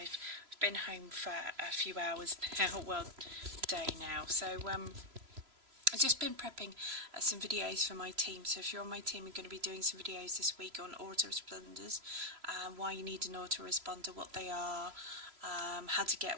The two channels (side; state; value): left; late; 3.0 ms